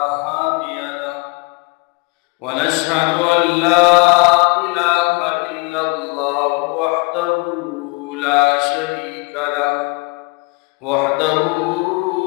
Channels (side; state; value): right; quieter; 27.6 dB